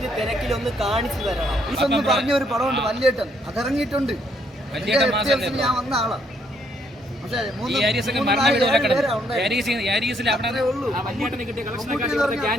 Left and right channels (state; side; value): normal; both; correlation 0.70